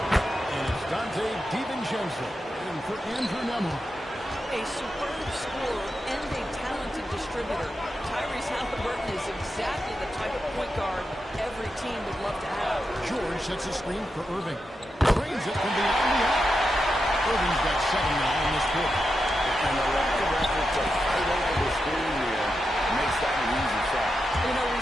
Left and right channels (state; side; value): normal; both; correlation 0.88